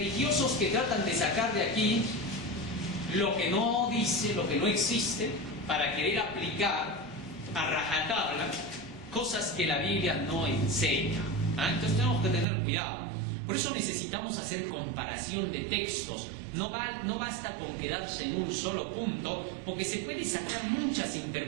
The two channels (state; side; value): drops out; left; at 12.5 s